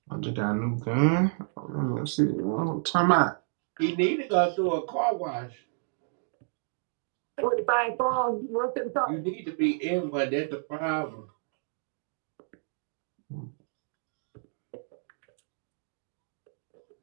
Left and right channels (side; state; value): left; silent; digital silence